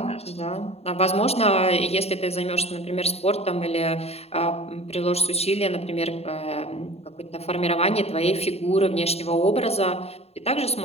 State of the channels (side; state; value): right; late; 0.30 ms